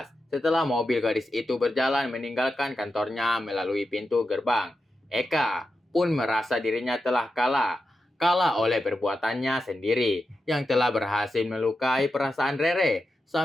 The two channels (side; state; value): both; normal; correlation 0.89